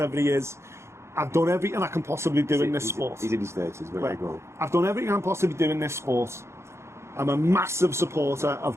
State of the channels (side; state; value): left; late; 0.13 ms